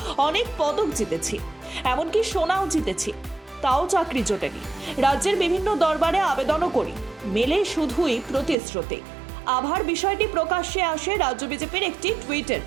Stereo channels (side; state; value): left; drops out; at 8.6 s